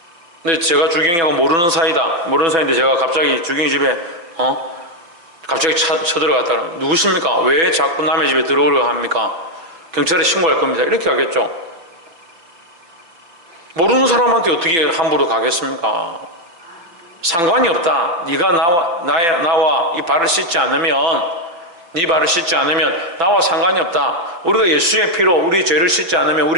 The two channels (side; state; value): left; late; 6.0 ms